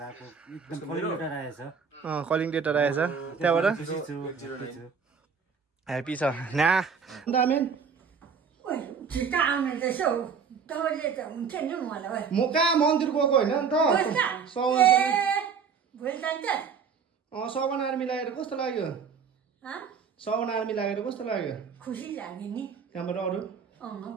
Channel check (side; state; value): left; quieter; 6.2 dB